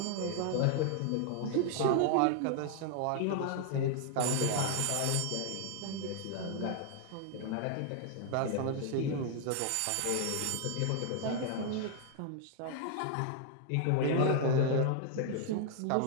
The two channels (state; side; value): different; both; correlation 0.00